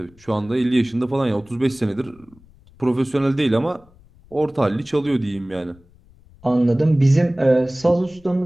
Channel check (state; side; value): noise; left; rumble, 27 dB below the sound